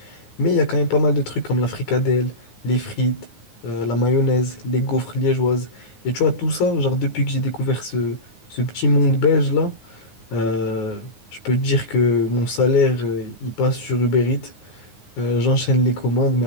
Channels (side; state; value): right; late; 9.5 ms